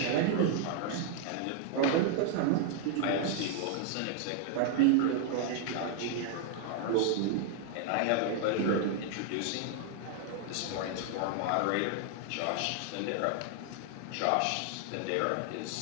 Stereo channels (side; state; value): both; different; correlation 0.00